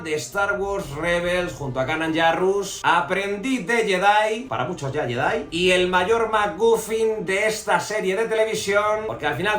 de Star Wars Rebels junto a Kanan Jarrus, aprendiz de Jedi, para muchos ya Jedi, y el mayor MacGuffin de esta serie de televisión, porque al final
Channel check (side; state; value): both; identical; correlation 1.00